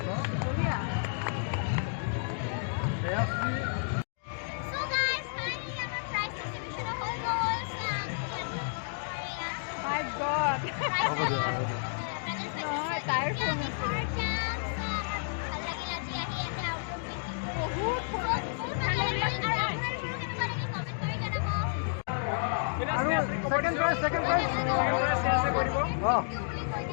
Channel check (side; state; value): right; silent; digital silence